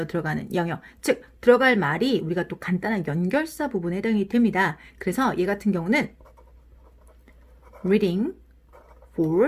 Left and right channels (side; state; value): both; identical; correlation 1.00